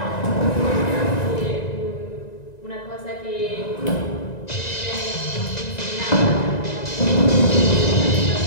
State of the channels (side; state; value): right; late; 1.9 ms